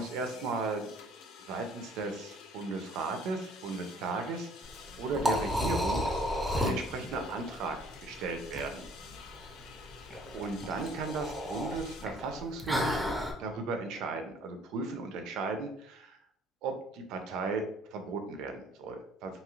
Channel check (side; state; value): both; normal; correlation 0.57